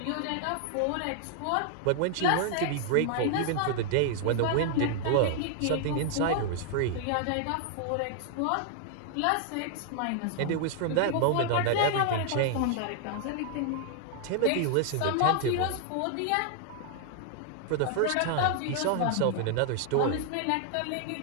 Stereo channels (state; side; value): different; both; correlation 0.00